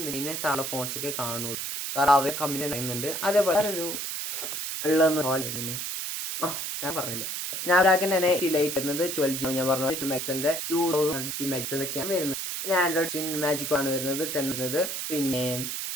ഇതിനെ താഴെ ഫോൺസ് ഒക്കെ കാണുള്ളൂ. കാരണം അവർ കമ്പനി പറയുന്നുണ്ട്. അതേപോലെ ഒരു ഞാൻ പറഞ്ഞില്ല, സ്നാപ്ഡ്രാഗൺ തന്നെ ലൈറ്റ് വരുന്നത് 12GB. ഞാൻ പറഞ്ഞു 2050 മെഗാപിക്സലൊക്കെയാണ് വരുന്നത്. പിന്നെ ആൻഡ്രോയിഡ് മാജിക് ആണ് വരുന്നത് 10 വരുന്നത്. പിന്നെ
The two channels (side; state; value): right; noise; hiss, 4 dB below the sound